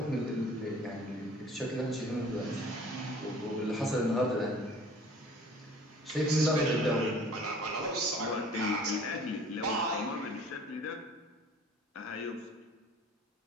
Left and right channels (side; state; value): both; normal; correlation 0.49